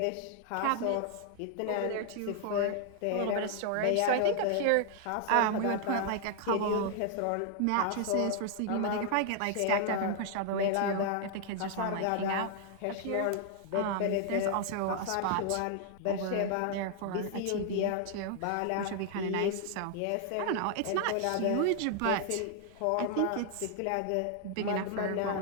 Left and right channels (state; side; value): different; both; correlation 0.00